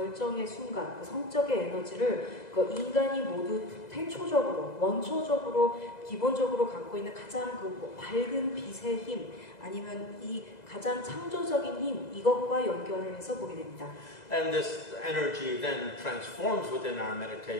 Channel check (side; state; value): right; late; 2.0 ms